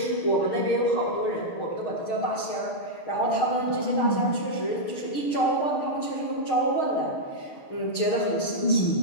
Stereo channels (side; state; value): right; late; 6.5 ms